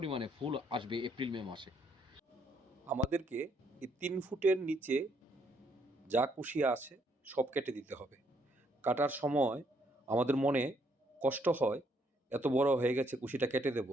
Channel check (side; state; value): both; normal; correlation 0.71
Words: ফুল আসবে এপ্রিল মে মাসে। আমাদেরকে এই 3 ফুটের নিচে যা কুশি আছে সব কেটে দিতে হবে। কাটার সময় আমাদের মনে কষ্ট হয়, এত বড় হয়ে গেছে কুশিটা কেটে দেব,